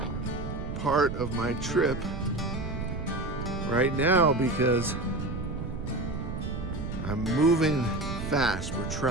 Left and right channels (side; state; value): right; noise; rumble, 5 dB below the sound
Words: part of my trip right now because I'm moving fast. We're